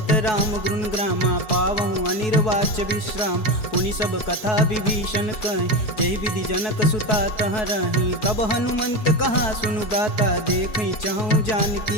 राम गुण ग्रामा पावहु अनिर्वाच्य विश्राम। पुनि सब कथा विभीषण कहि जेहि विधि जनक सुता तह रही। तब हनुमंत कहा सुनु भ्राता देखहि चहु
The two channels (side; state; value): right; late; 4.7 ms